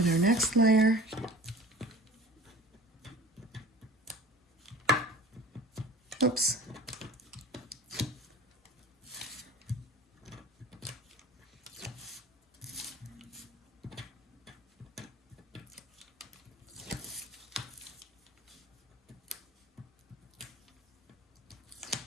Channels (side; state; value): both; normal; correlation 0.42